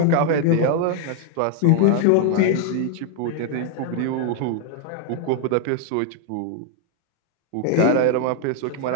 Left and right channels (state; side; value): different; both; correlation 0.00